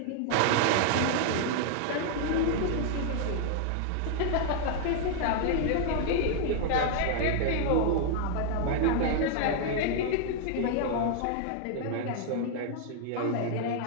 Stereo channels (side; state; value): both; different; correlation 0.00